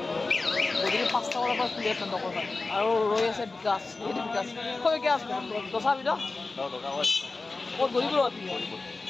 গধূলি 5টা বজাৰ পৰা খুলি আছে দোকান আৰু ৰৈ আছে বিকাশ কৈ কি আছে দোচা বিদ ক'ত গৌৰীপুৰত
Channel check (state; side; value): quieter; right; 3.6 dB